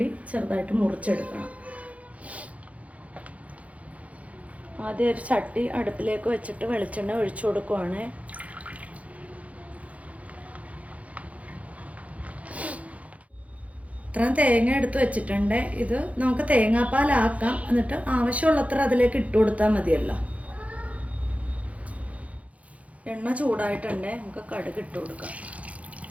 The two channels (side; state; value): left; late; 0.066 ms